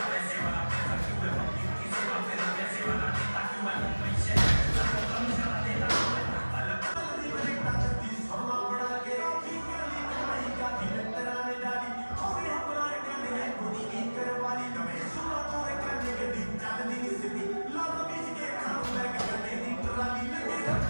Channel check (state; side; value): inverted; both; correlation -1.00